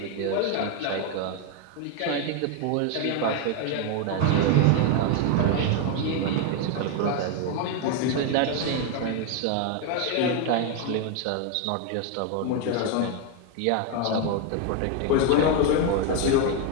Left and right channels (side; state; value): both; different; correlation 0.01